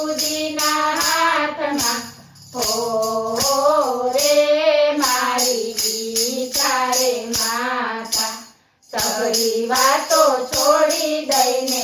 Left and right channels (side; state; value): both; identical; correlation 1.00